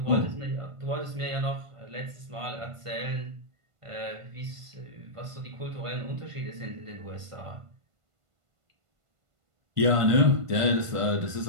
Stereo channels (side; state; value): left; late; 1.5 ms